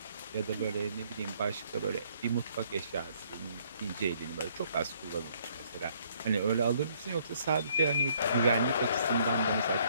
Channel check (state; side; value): inverted; both; correlation -0.65